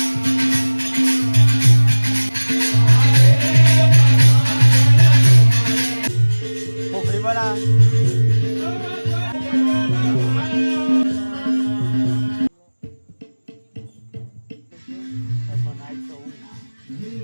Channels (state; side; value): inverted; both; correlation -1.00